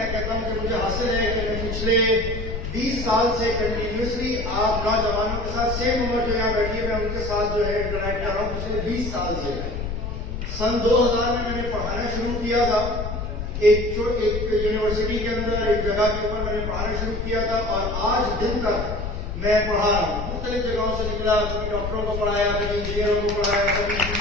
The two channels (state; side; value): noise; left; rumble, 5 dB below the sound